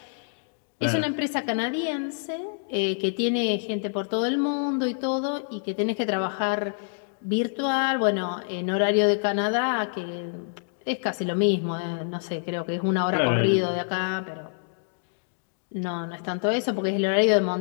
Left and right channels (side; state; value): right; silent; digital silence